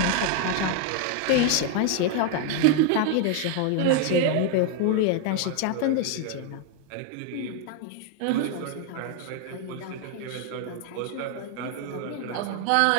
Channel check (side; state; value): both; different; correlation 0.00